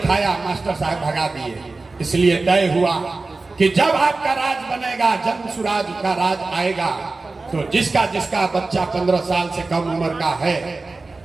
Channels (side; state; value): left; quieter; 3.6 dB